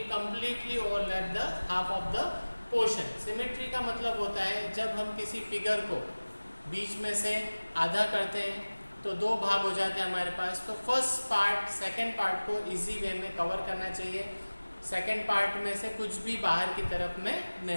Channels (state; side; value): inverted; both; correlation -1.00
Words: completely overlap the half of the portion. Symmetry का मतलब होता है जब हम किसी figure को बीच में से आधा करते हैं तो दो भाग हो जाते हैं हमारे पास. तो फर्स्ट पार्ट सेकंड पार्ट को इजी वे में कवर करना चाहिए. सेकंड पार्ट में से कुछ भी बाहर की तरफ में